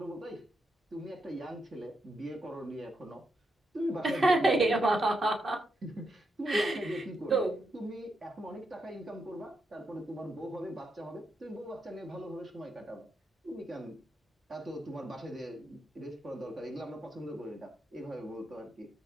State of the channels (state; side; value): normal; both; correlation 0.83